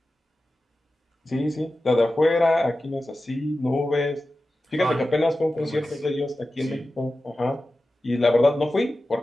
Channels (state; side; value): normal; both; correlation 0.94